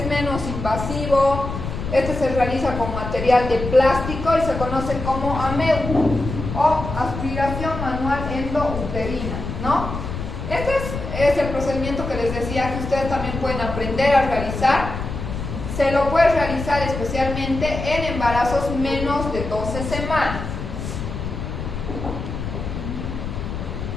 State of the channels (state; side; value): noise; left; rumble, 6 dB below the sound